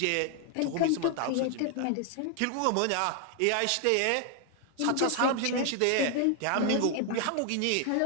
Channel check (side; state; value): both; different; correlation 0.00